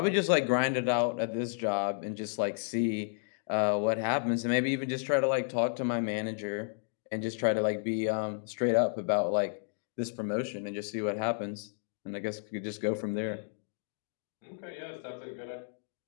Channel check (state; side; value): silent; right; digital silence